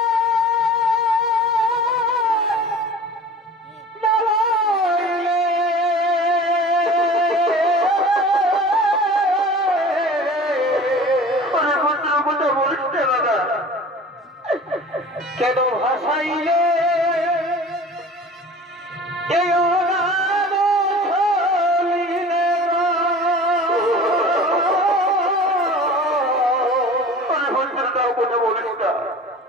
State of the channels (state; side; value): normal; both; correlation 0.41